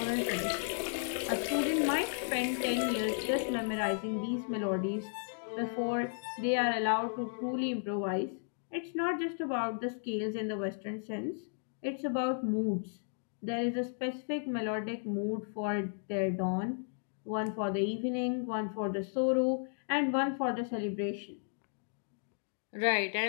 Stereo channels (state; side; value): silent; right; digital silence